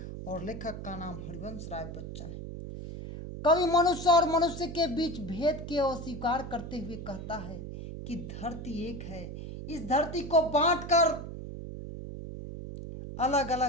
और लेखक का नाम हरिवंश राय बच्चन है। कवि मनुष्य और मनुष्य के बीच भेद के अस्वीकार करते हुए कहता है कि धरती एक है। इस धरती को बांटकर अलग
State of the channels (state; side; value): noise; right; hum, 9 dB below the sound